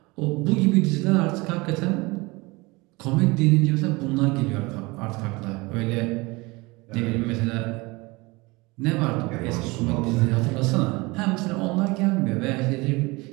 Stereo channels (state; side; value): quieter; left; 24.1 dB